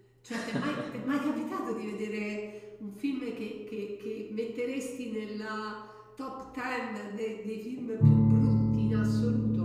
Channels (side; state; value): both; identical; correlation 1.00